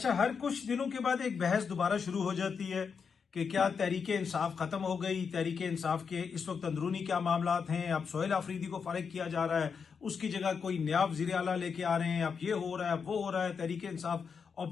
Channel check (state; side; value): quieter; right; 6.0 dB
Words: हर कुछ दिनों के बाद एक बहस दोबारा शुरू हो जाती है कि क्या तहरीक इंसाफ खत्म हो गई, तहरीक इंसाफ के इस वक्त अंदरूनी क्या मामलात हैं, अब सोहेल आफरीदी को फारिग किया जा रहा है, उसकी जगह कोई नया वजीर आला लेके आ रहे हैं, अब ये हो रहा है, वो हो रहा है, तहरीक इंसाफ